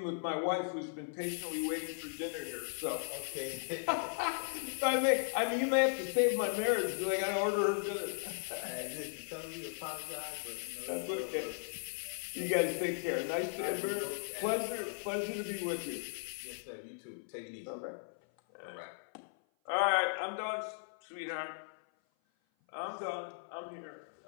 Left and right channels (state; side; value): silent; right; 53 dB below the other